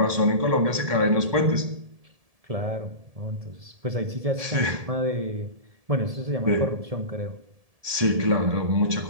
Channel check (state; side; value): late; left; 1.7 ms